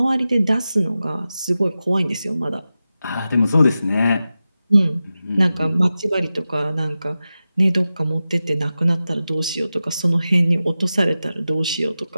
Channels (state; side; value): inverted; both; correlation -0.93